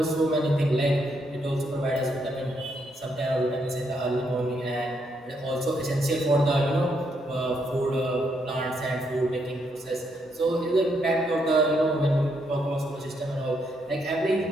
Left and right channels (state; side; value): normal; both; correlation 0.76